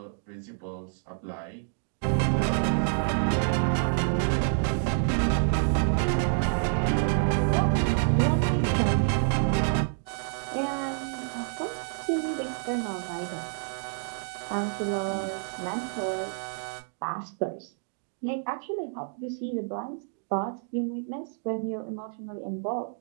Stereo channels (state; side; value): silent; left; digital silence